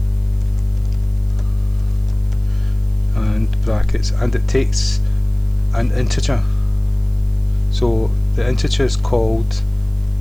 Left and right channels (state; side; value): noise; right; hiss, 29 dB below the sound